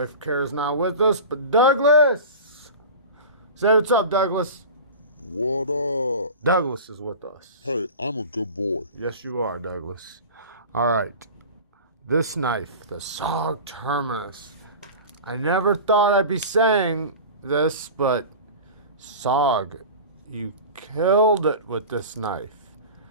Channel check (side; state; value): both; inverted; correlation -0.33